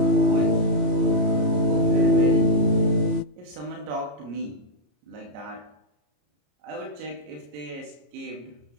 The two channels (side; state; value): left; late; 33 ms